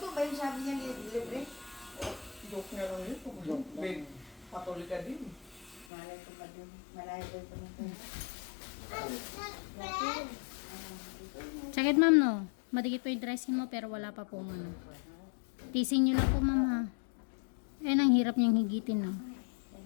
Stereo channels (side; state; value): right; drops out; at 5.9 s